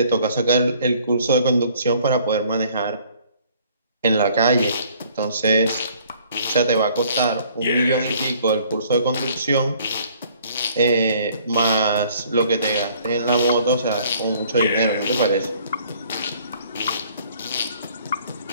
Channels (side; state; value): both; inverted; correlation -0.58